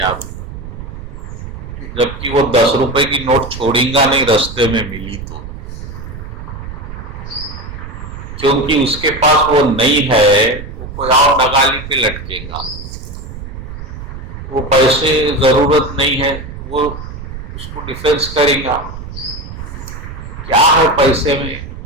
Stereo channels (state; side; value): noise; right; rumble, 10 dB below the sound